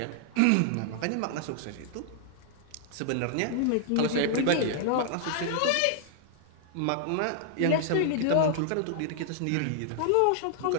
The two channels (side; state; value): both; different; correlation -0.01